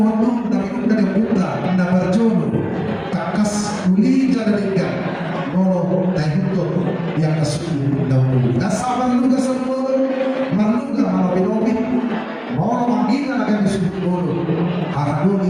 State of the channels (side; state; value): both; identical; correlation 1.00